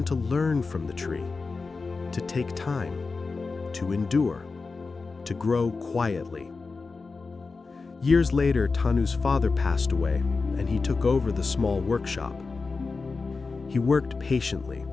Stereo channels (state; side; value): quieter; right; 4.2 dB